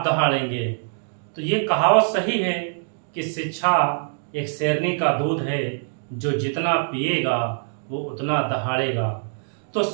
दहाड़ेंगे। तो ये कहावत सही है कि शिक्षा एक शेरनी का दूध है, जो जितना पिएगा वो उतना दहाड़ेगा। तो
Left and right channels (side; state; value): left; silent; digital silence